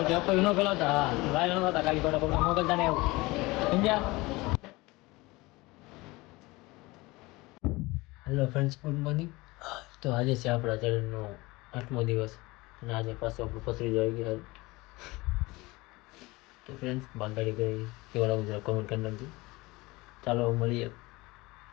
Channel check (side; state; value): right; quieter; 22.2 dB